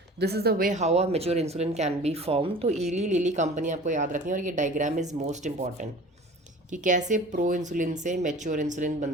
This is the way how a mature insulin can B form. तो इली लिली कंपनी आपको याद रखनी है, और ये डायग्राम इज़ मोस्ट इंपॉर्टेंट कि कैसे प्रो इंसुलिन से मैच्योर इंसुलिन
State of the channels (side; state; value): both; normal; correlation 0.42